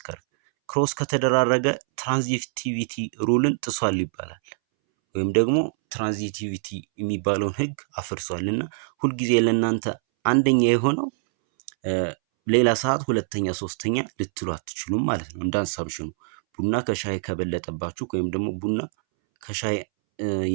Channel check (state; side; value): silent; left; 62 dB below the other